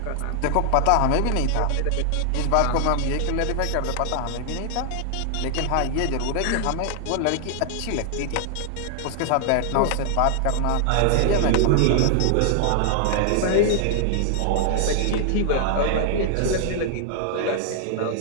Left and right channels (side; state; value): both; different; correlation 0.00